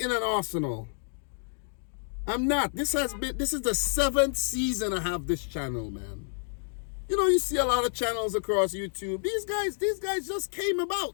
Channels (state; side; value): silent; right; digital silence